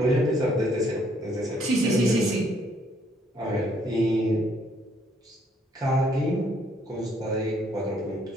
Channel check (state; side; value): normal; both; correlation 0.67